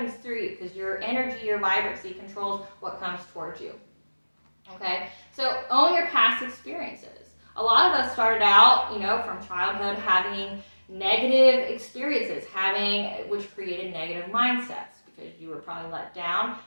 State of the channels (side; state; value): both; inverted; correlation -1.00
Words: through you because your energy, your vibrancy controls what comes towards you, okay? So own your past experiences. A lot of us started out, from childhood having negative experiences, which created negative mindsets because you were probably let down.